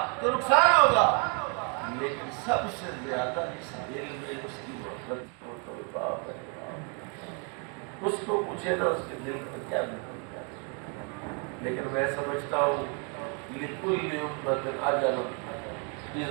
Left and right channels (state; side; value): quieter; left; 37.5 dB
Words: تو نقصان ہوگا، لیکن سب سے زیادہ اس دل میں اس کی محبت کو تو باپ ہے۔ اس کو پوچھے نا اس کے دل میں کیا نکلتا ہے۔ لیکن میں سمجھتا ہوں لِكُلِّ أُمَّةٍ أَجَلٌ